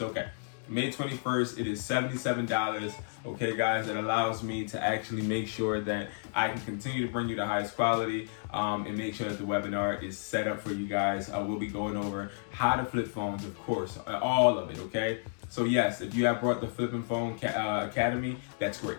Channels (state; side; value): silent; right; digital silence